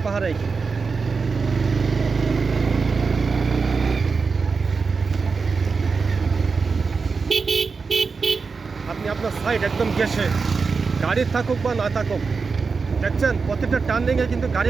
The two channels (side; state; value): left; quieter; 4.8 dB